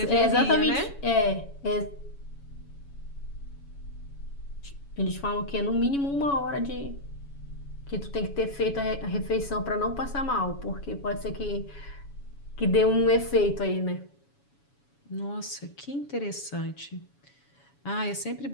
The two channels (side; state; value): right; late; 7.1 ms